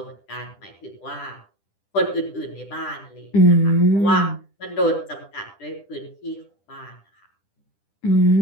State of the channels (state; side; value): late; right; 10 ms